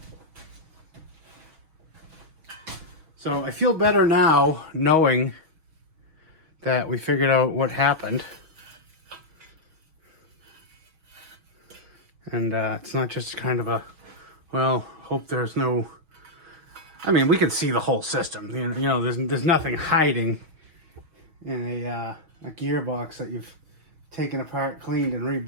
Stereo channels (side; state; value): left; late; 6.3 ms